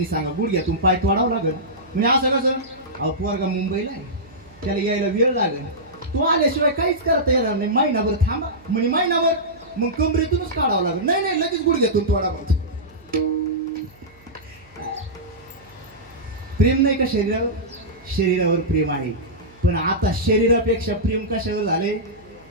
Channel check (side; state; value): right; noise; hum, 28 dB below the sound